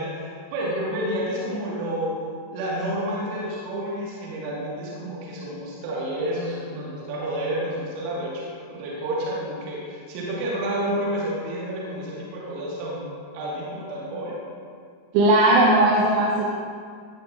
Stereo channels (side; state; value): left; late; 34 ms